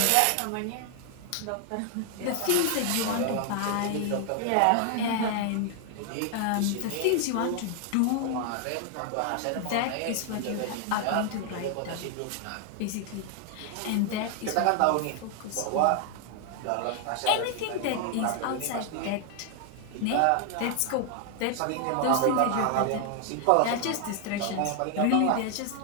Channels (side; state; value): both; different; correlation 0.00